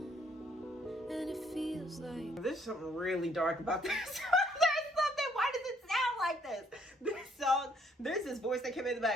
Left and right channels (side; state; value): both; normal; correlation 0.67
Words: and it feels like There's something really dark about this. There's something. Why does it sound like this? This song, there's this voice that came in the